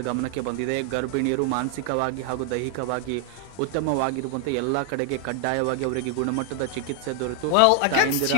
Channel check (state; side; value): different; both; correlation 0.00